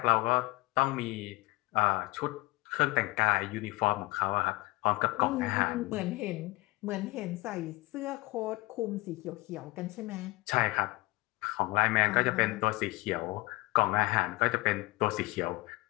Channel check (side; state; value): right; quieter; 21.9 dB